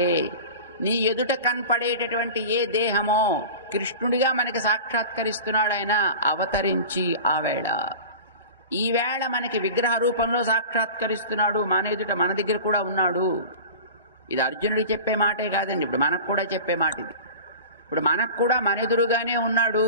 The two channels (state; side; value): inverted; both; correlation -0.35